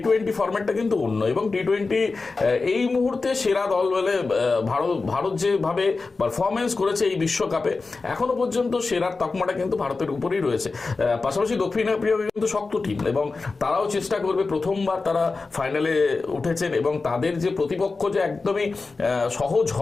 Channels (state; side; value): quieter; right; 4.0 dB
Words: ফরম্যাটটা কিন্তু অন্য। এবং টি-20 এই মুহূর্তে সেরা দল বলে ভারত যেভাবে পারফরমেন্স করেছে এই বিশ্বকাপে, এখনো পর্যন্ত সেরার তকমাটা কিন্তু ভারতের উপরেই রয়েছে। পাশাপাশি দক্ষিণ আফ্রিকা কিন্তু শক্ত টিম, এবং তারাও চেষ্টা করবে। প্রথমবার তারা ফাইনালে উঠেছেন, এবং তাদের যে প্রতিপক্ষ যে একদমই সহজ